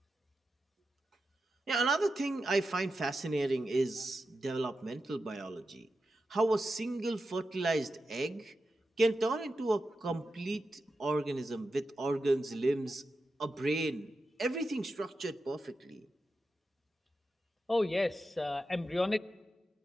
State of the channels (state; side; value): normal; both; correlation 0.90